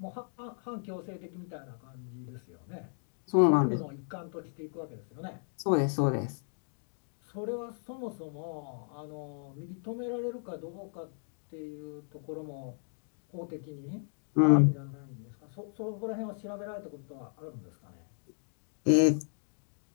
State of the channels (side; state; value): right; silent; digital silence